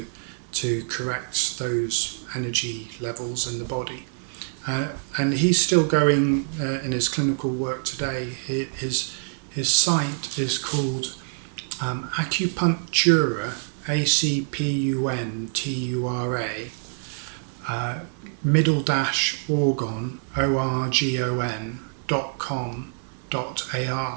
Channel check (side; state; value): left; silent; 60 dB below the other